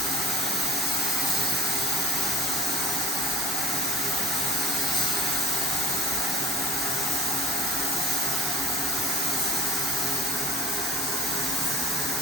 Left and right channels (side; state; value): both; normal; correlation 0.42